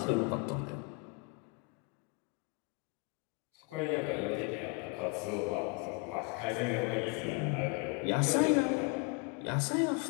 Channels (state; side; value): quieter; right; 29.5 dB